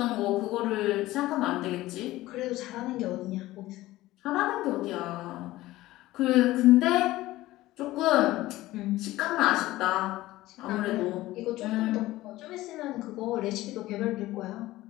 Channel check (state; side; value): quieter; right; 17.0 dB